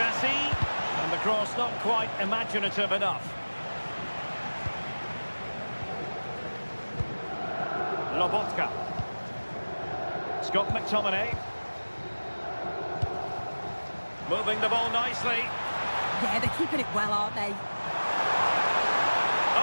And the cross not quite imaginative enough. Lobotka. Scott McTominay. Moving the ball nicely. Yeah, they're keeping it well, aren't they?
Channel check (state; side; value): inverted; both; correlation -1.00